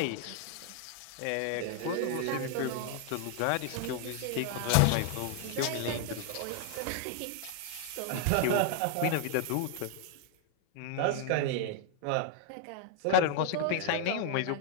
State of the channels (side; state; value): both; different; correlation 0.00